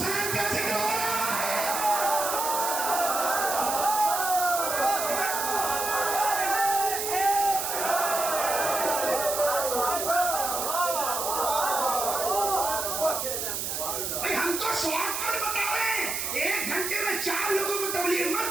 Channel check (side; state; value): right; noise; hiss, 2 dB below the sound